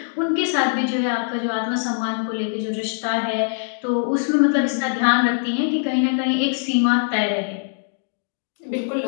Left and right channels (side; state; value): right; silent; digital silence